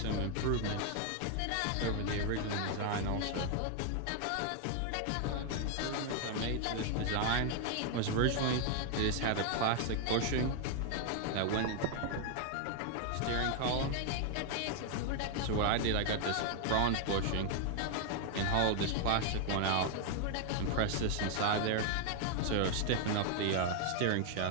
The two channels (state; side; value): different; both; correlation 0.00